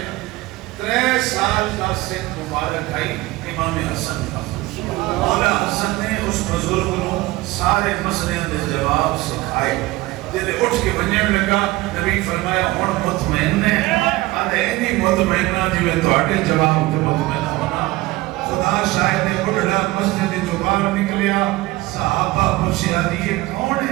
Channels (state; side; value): quieter; left; 19.6 dB